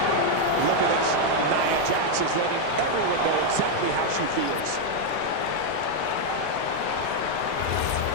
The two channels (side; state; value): both; different; correlation 0.01